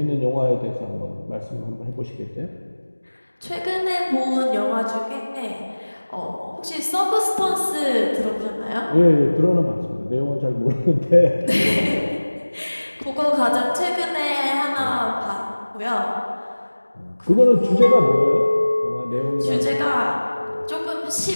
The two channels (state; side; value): inverted; both; correlation -1.00